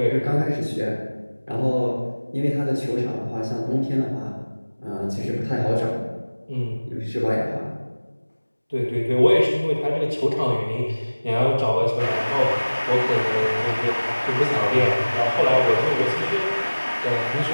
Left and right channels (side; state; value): both; inverted; correlation -1.00